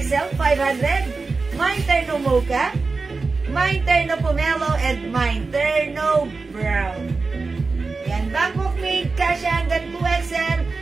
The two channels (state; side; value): quieter; left; 4.1 dB